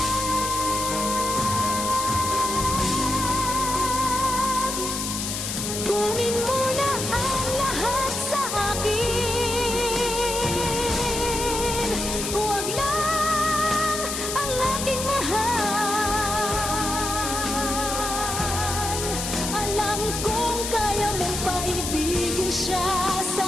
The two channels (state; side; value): noise; left; hiss, 4 dB below the sound